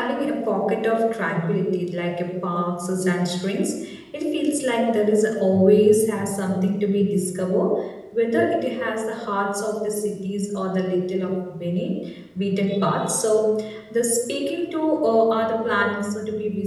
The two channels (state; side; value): identical; both; correlation 1.00